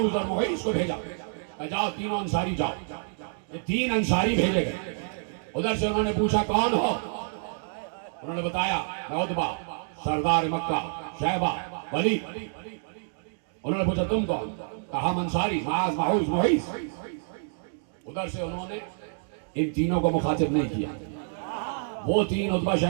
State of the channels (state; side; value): silent; left; digital silence